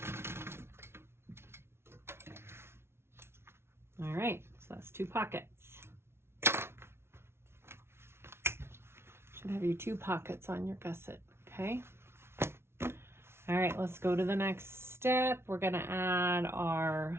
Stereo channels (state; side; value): late; left; 0.12 ms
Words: All right, so that's 2 pockets. Should have your 2 pockets on your gusset, okay? All right, let's go to the next step. We're gonna add